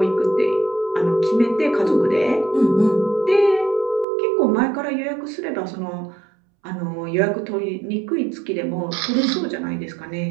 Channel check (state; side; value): drops out; left; at 4.0 s